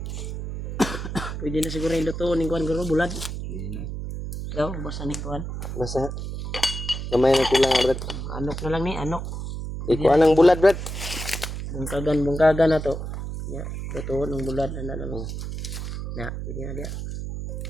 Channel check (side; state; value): right; noise; hum, 6 dB below the sound